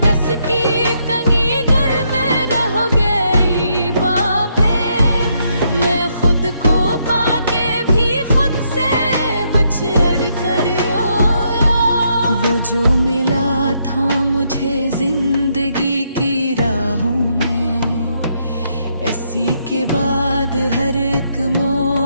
कस की तंगी घर में रह गई बातें, मैं खुद को पाके भी खुद से बिछड़ कर रोया। वो जो मिला था मुझे जिंदगी की राहों में, इसी के बाद हर एक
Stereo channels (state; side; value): inverted; both; correlation -0.76